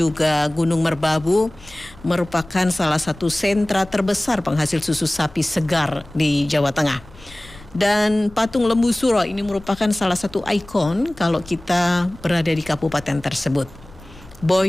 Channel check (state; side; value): noise; left; rumble, 21 dB below the sound